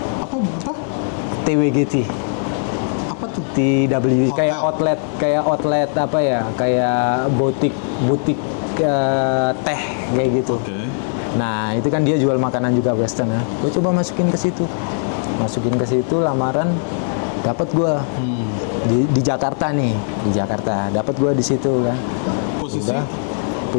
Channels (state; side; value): silent; right; digital silence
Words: Apa? TWGT. Apa tuh? TW Hotel. kayak outlet apa ya, kayak butik teh kayak gitu. Oke. Nah itu kan dia jual makanan juga Western ya. Gue coba masukin ke situ lamaran, dapat gue di Jakarta nih, dapat gue di situ kan.